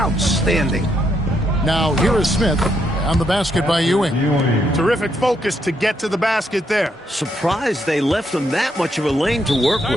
Now here is Smith. On the basket by Ewing. Terrific focus to get to the basket there. Surprised they left him that much of a lane to work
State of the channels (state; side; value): normal; both; correlation 0.76